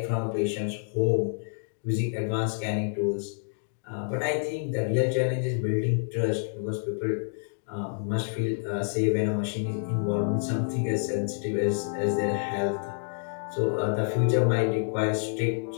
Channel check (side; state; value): right; silent; digital silence